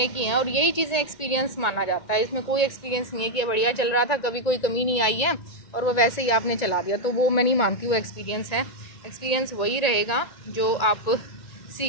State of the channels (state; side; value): late; right; 1.9 ms